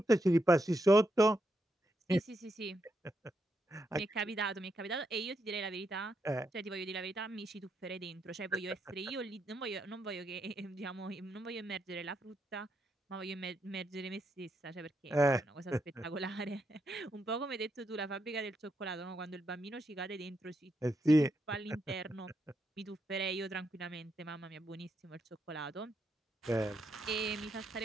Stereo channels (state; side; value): normal; both; correlation 0.81